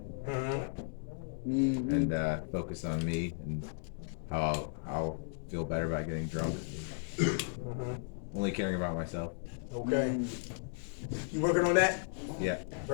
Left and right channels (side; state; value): right; silent; digital silence